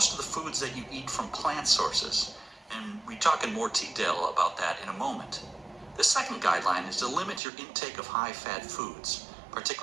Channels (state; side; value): drops out; left; at 7.4 s